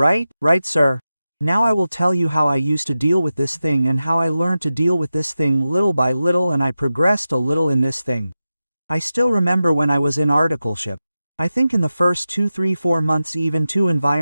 Right, sir. Now I will tell you how I used to deal with this thing and how I learned to deal with this thing little by little, and I progressed a little in this thing. I still remember when I was in articleship. I think in the first 2, 3, 4 months even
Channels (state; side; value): inverted; both; correlation -0.93